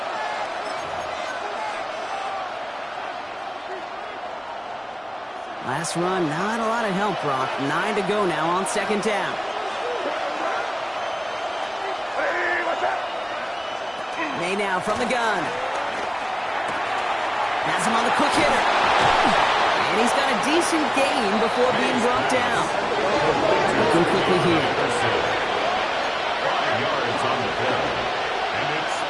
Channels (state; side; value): identical; both; correlation 1.00